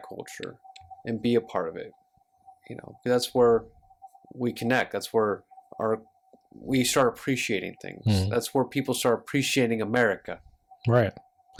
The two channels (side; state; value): both; identical; correlation 1.00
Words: culture, and be a part of it. That's where we connect. That's where we start appreciating things. Mm-hmm. That's where people start appreciating America. Right.